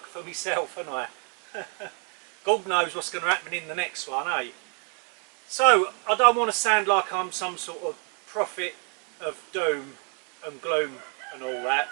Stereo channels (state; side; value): quieter; left; 35.7 dB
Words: for myself, aren't I? God knows what's going to happen in the next one, eh? So, I don't want to sound like I'm some sort of prophet of doom and gloom and all that,